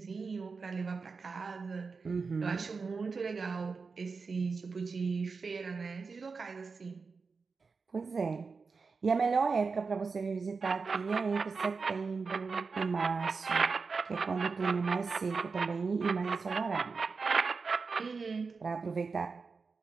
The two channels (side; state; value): left; quieter; 4.7 dB